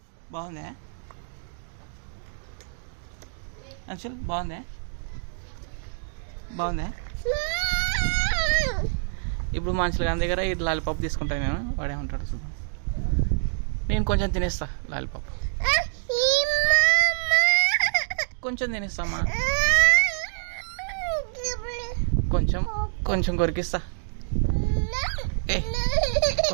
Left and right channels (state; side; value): silent; left; digital silence